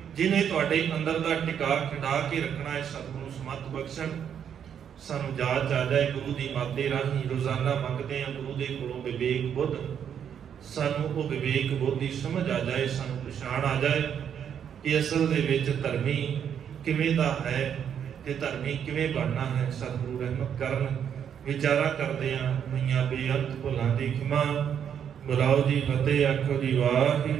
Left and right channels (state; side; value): quieter; left; 8.5 dB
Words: ਜਿਹਨੇ ਤੁਹਾਡੇ ਅੰਦਰ ਦਾ ਟਿਕਾ ਖਿੰਡਾ ਕੇ ਰੱਖਣਾ ਹੈ। ਸਤਿਗੁਰੂ ਸਮੱਤ ਬਖਸ਼ਣ, ਸਾਨੂੰ ਜਾਚ ਆ ਜਾਏ ਗੁਰੂ ਦੀ ਮਾਤੇ ਰਾਹੀਂ। ਰੋਜ਼ਾਨਾ ਮੰਗਦੇ ਹਾਂ ਗੁਰੂ ਦੇ ਕੋਲੋਂ ਵਿਵੇਕ ਬੁੱਧ, ਸਾਨੂੰ ਉਹ ਵਿਵੇਕ ਬੁੱਧ ਦੀ ਸਮਝ ਆ ਜਾਏ, ਸਾਨੂੰ ਪਛਾਣ ਆ ਜਾਏ ਕਿ ਅਸਲ ਦੇ ਵਿੱਚ ਧਰਮੀ ਕਿਵੇਂ ਦਾ ਹੈ ਤੇ ਧਰਮੀ ਕਿਵੇਂ ਬਣਨਾ ਹੈ। ਸਤਿਗੁਰੂ ਰਹਿਮਤ ਕਰਨ, ਵਿਚਾਰਾ ਕਰਦਿਆਂ ਹੋਈਆਂ ਬੇਅੰਤ ਭੁੱਲਾਂ ਦੀ ਖਿਮਾ। ਬੁਲਾਓ ਜੀ ਫਤਿਹ, ਆਖੋ ਜੀ